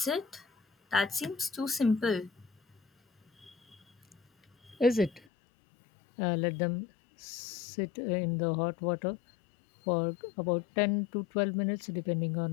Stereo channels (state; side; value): drops out; right; at 5.2 s